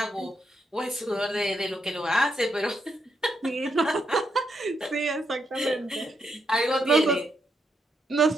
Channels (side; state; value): both; normal; correlation 0.80